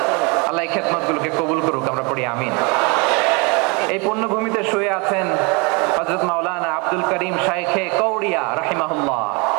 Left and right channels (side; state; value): left; quieter; 30.4 dB